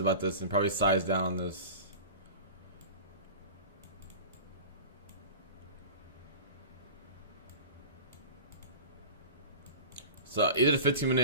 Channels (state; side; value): inverted; both; correlation -0.35